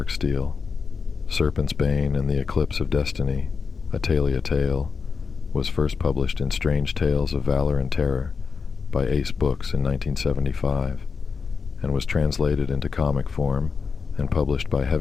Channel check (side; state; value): right; quieter; 5.3 dB